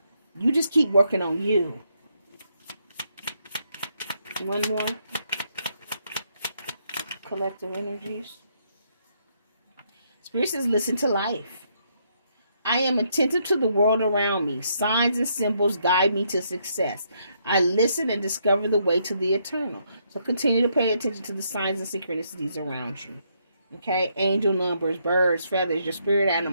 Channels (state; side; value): inverted; both; correlation -0.74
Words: You just keep working on you. One more. Collective energies. Spirit says, listen to life. I am attentive to the world around me. Signs and symbols guide me to success. I listen and discover the way to the eternal. So continue to pay attention to the signs and synchronicities around you. Okay? Angel numbers, birds, feathers, your spirit